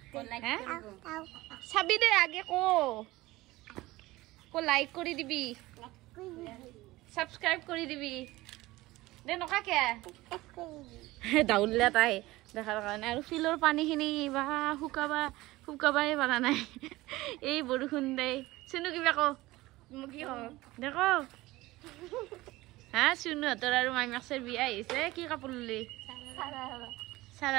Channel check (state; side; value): quieter; left; 19.0 dB